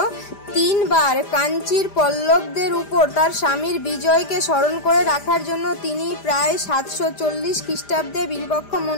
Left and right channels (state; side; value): late; right; 5.0 ms